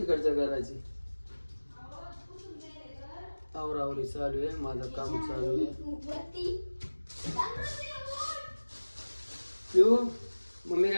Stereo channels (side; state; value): both; inverted; correlation -1.00